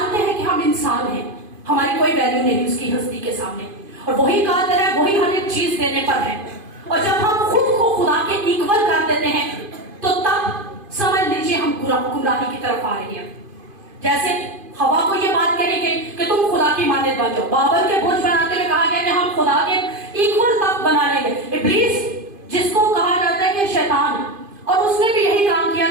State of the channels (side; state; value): left; late; 2.5 ms